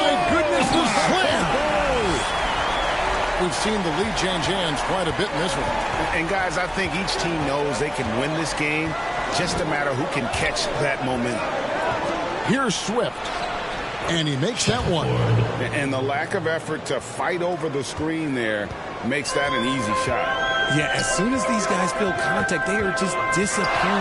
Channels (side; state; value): both; identical; correlation 1.00